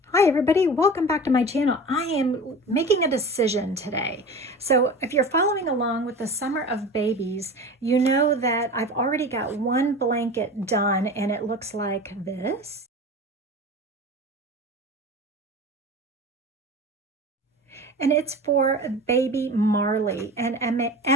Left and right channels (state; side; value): normal; both; correlation 0.34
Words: Hi everybody, welcome back to my channel. I am making a decision today. So if you're following along with the Summer of Babies, you know that I've already got one blanket done and it looks like this. And it's for baby Marley, and